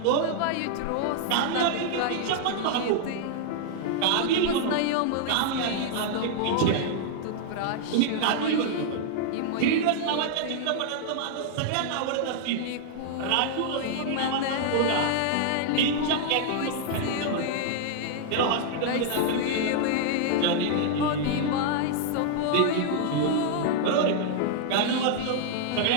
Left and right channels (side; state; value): both; different; correlation -0.01